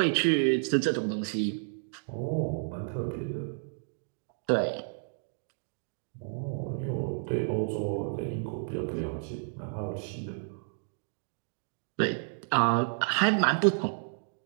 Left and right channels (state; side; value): silent; left; digital silence